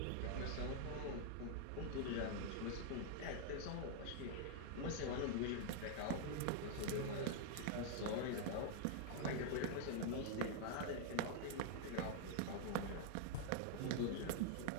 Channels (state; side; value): different; both; correlation -0.01